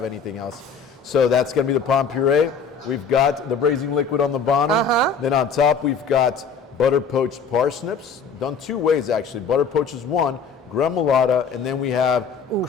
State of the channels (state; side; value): quieter; right; 5.6 dB